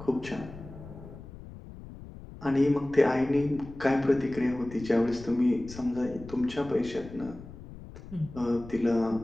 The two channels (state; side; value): noise; left; rumble, 15 dB below the sound